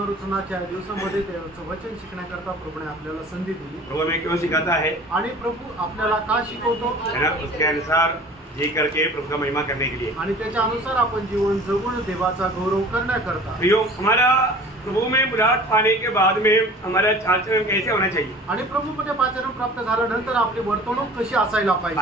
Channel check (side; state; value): both; normal; correlation 0.44